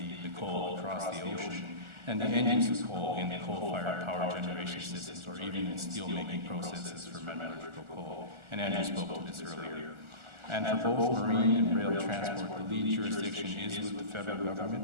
coal across the ocean, and the end use of coal in the coal-fired power generation systems, or even in steel-making processes for metallurgical coal. And Andrew spoke to this earlier. And for both marine and rail transport, the lead jurisdiction is with the federal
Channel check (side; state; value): left; late; 1.4 ms